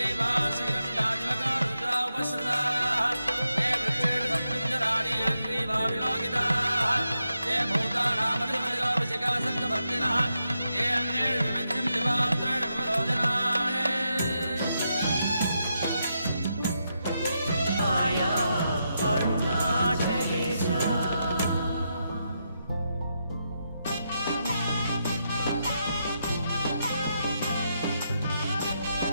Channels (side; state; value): both; inverted; correlation -0.84